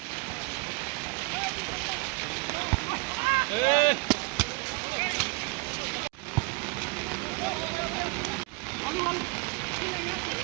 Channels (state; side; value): quieter; left; 28.0 dB